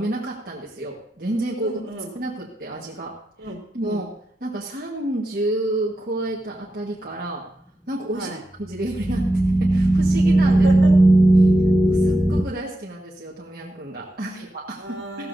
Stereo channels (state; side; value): normal; both; correlation 0.89